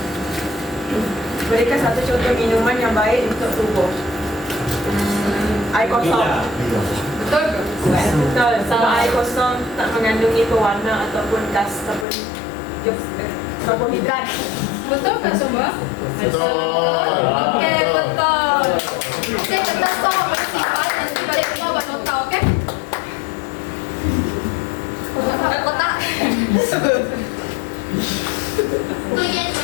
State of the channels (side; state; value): right; drops out; at 12.1 s